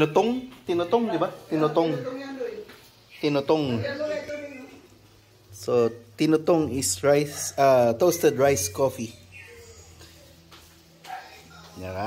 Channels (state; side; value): identical; both; correlation 1.00